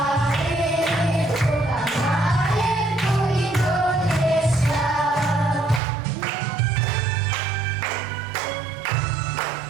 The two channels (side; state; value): left; drops out; at 5.8 s